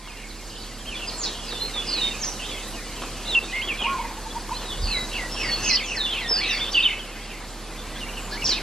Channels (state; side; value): normal; both; correlation 0.77